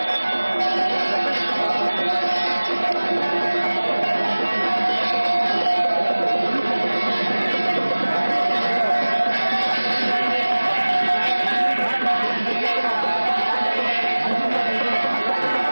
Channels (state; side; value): inverted; both; correlation -1.00